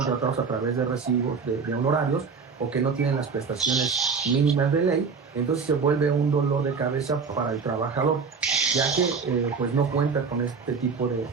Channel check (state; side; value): quieter; left; 5.3 dB